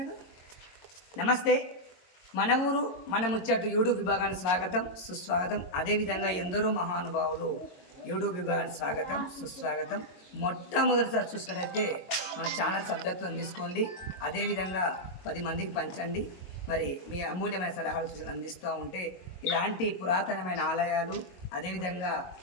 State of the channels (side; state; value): right; late; 22 ms